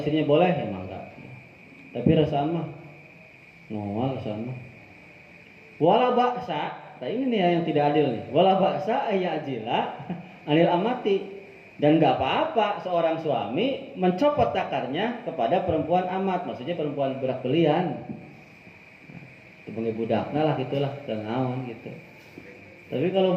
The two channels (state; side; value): identical; both; correlation 1.00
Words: boleh ya enggak. Tapi rasaan mah ngawal rasaan mah. Wala ba'sa, nah ini nih yang tidak adil nih. Wala ba'sa ayajila anil amati. Dan nggak apa-apa seorang suami mencopot dakarnya kepada perempuan amat, maksudnya perempuan budak belian. Itu bengi budakna lah gitulah, dan naon gitu. Tapi kalau